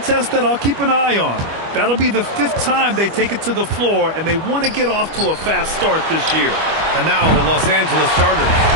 that I'll keep an eye on. That'll be the 5th time they take it to the floor, and they want to get off to a fast start this year. And now the Los Angeles starters.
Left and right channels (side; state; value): left; late; 25 ms